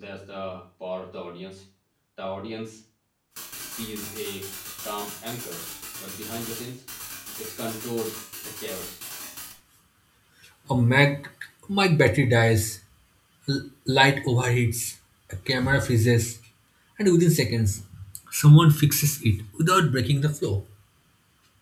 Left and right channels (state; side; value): identical; both; correlation 1.00